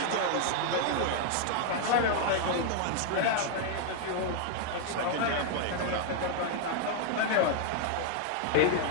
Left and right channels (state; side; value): different; both; correlation 0.00